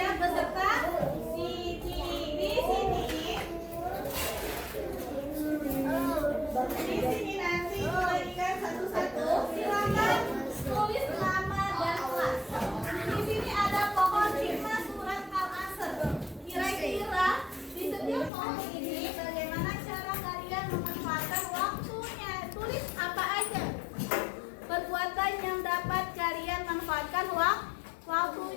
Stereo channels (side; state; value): right; drops out; at 18.3 s